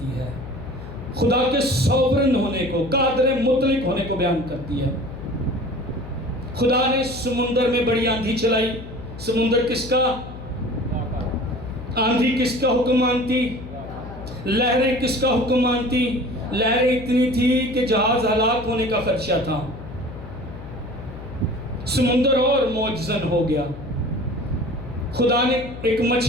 ہے، خدا کے سوورن ہونے کو، قادر مطلق ہونے کو بیان کرتی ہے۔ خدا نے سمندر میں بڑی آندھی چلائی، سمندر کس کا؟ آندھی کس کا حکم مانتی؟ لہریں کس کا حکم مانتی؟ لہریں اتنی تھی کہ جہاز ہلاک ہونے کا خدشہ تھا، سمندر اور موجزن ہو گیا۔ خدا نے ایک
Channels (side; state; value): left; noise; hum, 12 dB below the sound